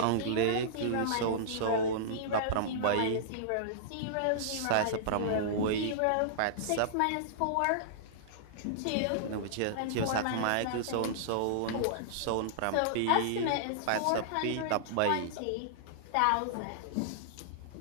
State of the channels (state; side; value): different; both; correlation -0.02